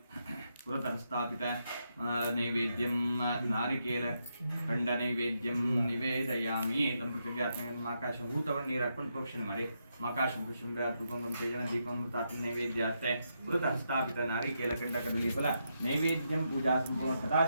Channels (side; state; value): both; inverted; correlation -0.81